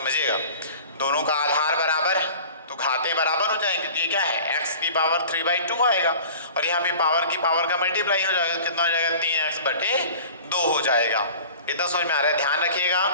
दोनों का आधार बराबर तो घाते बराबर हो जाएंगे तो ये क्या है x की पावर 3/2 आएगा और यहाँ पे पावर की पावर का मल्टीप्लाई हो जाएगा तो कितना हो जाएगा 3x बटे 2 हो जाएगा। इतना समझ में आ रहा है? ध्यान रखिएगा,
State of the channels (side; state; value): both; inverted; correlation -0.42